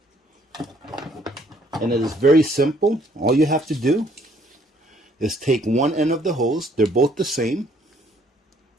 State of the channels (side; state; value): both; normal; correlation 0.64